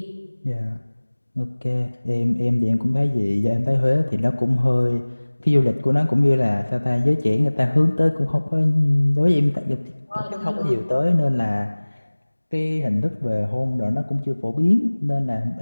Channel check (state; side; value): inverted; both; correlation -1.00